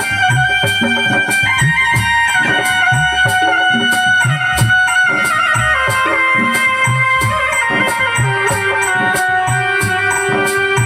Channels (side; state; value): both; identical; correlation 1.00